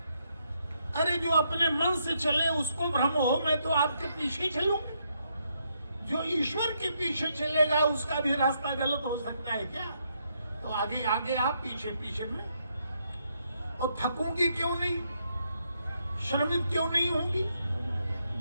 अरे जो अपने मन से चले उसको भ्रम हो, मैं तो आपके पीछे चलूंगी। जो ईश्वर के पीछे चलेगा उसका भी रास्ता गलत हो सकता है क्या? तो आगे आगे आप पीछे पीछे में। और थकूंगी क्यों नहीं? श्रमित क्यों नहीं होंगी?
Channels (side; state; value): both; inverted; correlation -0.77